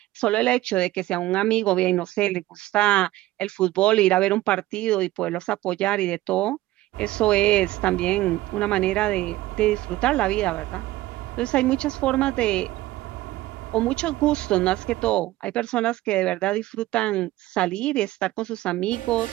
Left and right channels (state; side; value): quieter; left; 16.7 dB